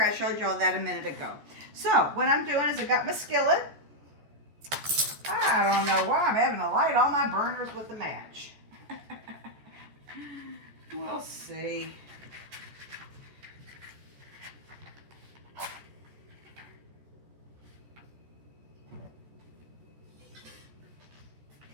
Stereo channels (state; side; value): late; left; 14 ms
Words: I showed you all that a minute ago. So what I'm doing is I got my skillet. I don't know why I'm having to light all my burners with a match. We'll see.